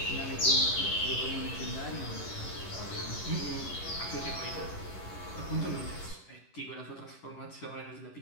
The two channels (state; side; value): late; right; 11 ms